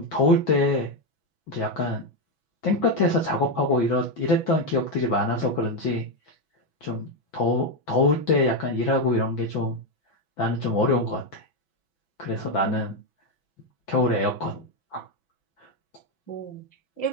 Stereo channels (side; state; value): right; late; 6.1 ms